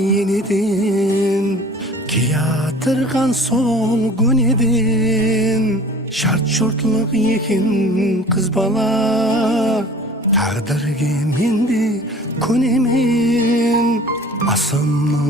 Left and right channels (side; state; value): both; normal; correlation 0.45